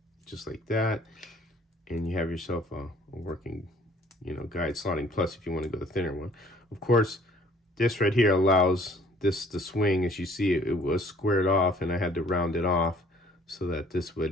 just like that. And you have yourself a working, you know, guide Slotting Plus if you want to go the thinner one. Of course, this right here allows this to swing. As you see, it was squared off, and I had to round it off so that this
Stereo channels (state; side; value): normal; both; correlation 0.56